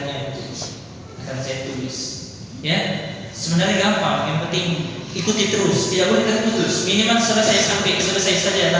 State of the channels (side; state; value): both; identical; correlation 1.00